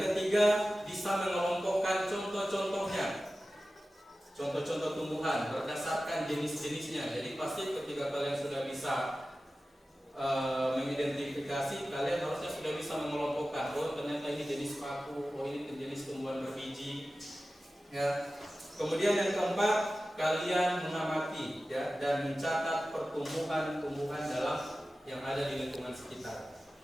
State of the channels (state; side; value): normal; both; correlation 0.95